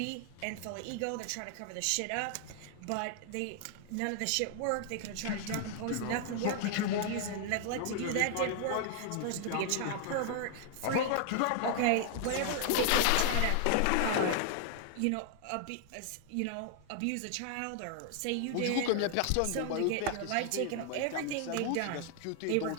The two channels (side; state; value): both; different; correlation 0.00